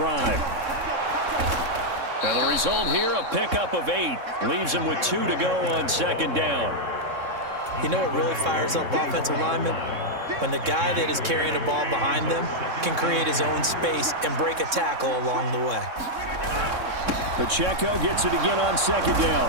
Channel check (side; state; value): left; late; 3.6 ms